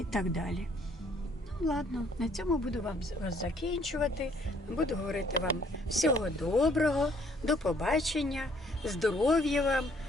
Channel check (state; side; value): normal; both; correlation 0.63